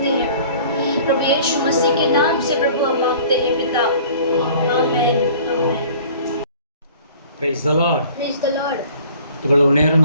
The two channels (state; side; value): inverted; both; correlation -0.49